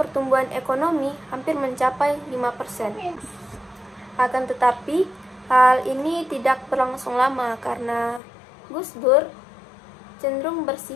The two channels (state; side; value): drops out; right; at 8.2 s